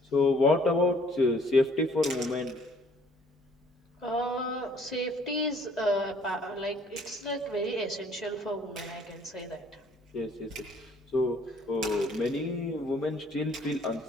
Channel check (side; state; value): both; normal; correlation 0.60